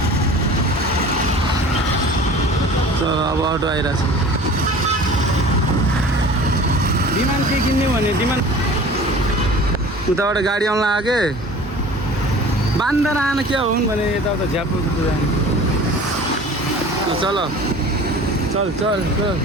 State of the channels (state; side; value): normal; both; correlation 0.42